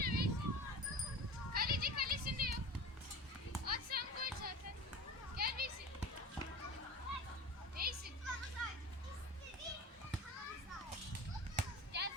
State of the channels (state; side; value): normal; both; correlation 0.34